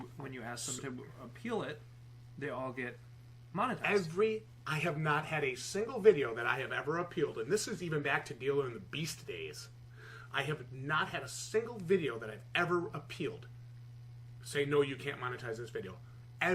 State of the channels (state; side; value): identical; both; correlation 1.00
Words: you ask them to appeal it, they all get monetized? I have not had a single video that I have ever appealed, and this is even back to Dealer in the Beast days. I have not had a single video that I've ever appealed say, no, you can't monetize this video.